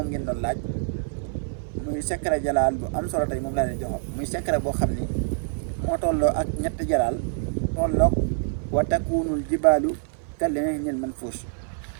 ngeen doon laaj muy secret jalaal bu am solo tey moom laa leen jox muy secret boo xam ni moo tolloo ak ñetti jalaal tolloog wa takunul jibaalu kal ahnil manfuus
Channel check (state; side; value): silent; left; 55 dB below the other